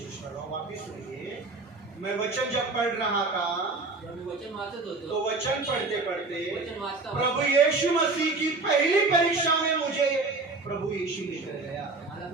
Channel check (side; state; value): left; quieter; 3.6 dB